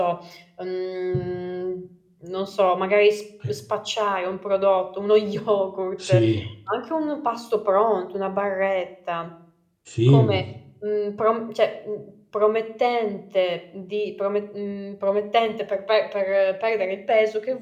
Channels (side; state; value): both; identical; correlation 1.00